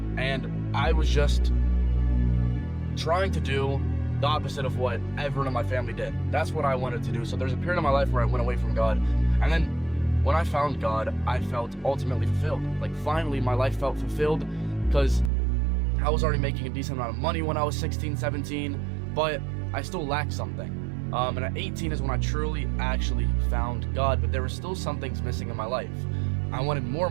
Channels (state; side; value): drops out; left; at 15.3 s